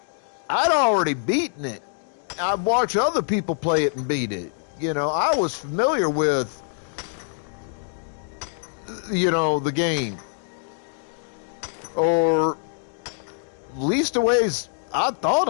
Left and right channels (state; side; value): silent; right; digital silence